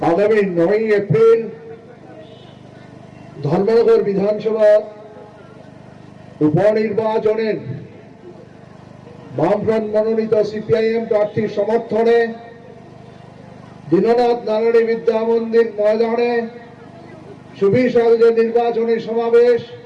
আগামী 9 এপ্রিল ধর্মনগর বিধানসভা উপনির্বাচনের বামফ্রন্ট মনোনীত সিপিআইএম প্রার্থীর সমর্থনে দীননাথ নারায়ণী বিদ্যা মন্দির ময়দানে সুবিশাল যে নির্বাচনী সমাবেশ,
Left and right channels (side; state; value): both; identical; correlation 1.00